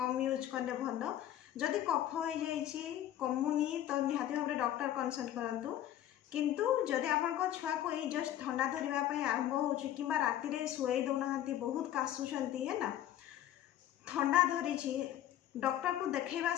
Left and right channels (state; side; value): quieter; right; 12.0 dB